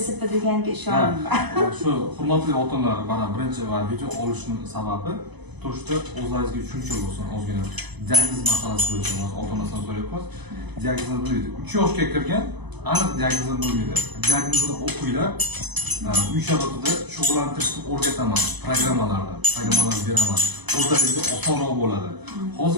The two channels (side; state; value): left; late; 1.0 ms